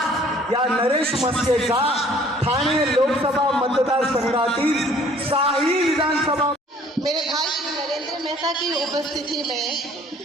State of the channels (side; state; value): both; normal; correlation 0.56